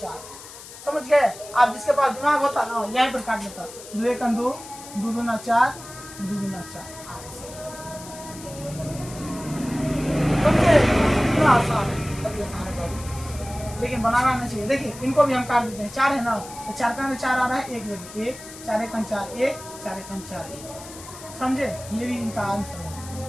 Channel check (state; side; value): noise; left; hiss, 15 dB below the sound